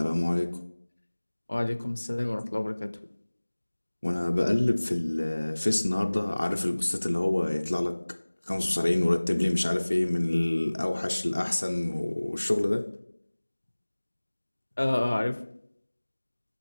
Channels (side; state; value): both; inverted; correlation -1.00